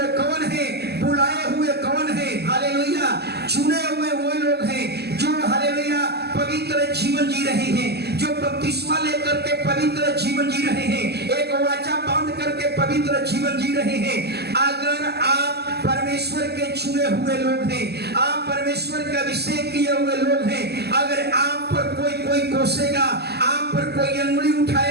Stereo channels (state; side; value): late; left; 0.47 ms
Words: कौन है? बुलाए हुए कौन है? हालेलुया, चुने हुए वो लोग हैं जो हालेलुया पवित्र जीवन जी रहे हैं, जो बपतिस्मा लेकर के पवित्र जीवन जी रहे हैं, एक वाचा बांध करके पवित्र जीवन जी रहे हैं। अगर आप परमेश्वर के चुने हुए लोग हैं, आप परमेश्वर का अभिषेक किए हुए लोग हैं, अगर आप पर कोई कोसेगा, आप पर कोई अंगुली